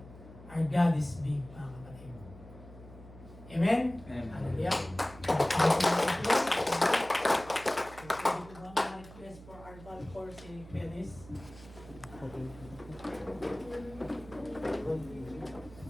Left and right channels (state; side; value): noise; right; hum, 18 dB below the sound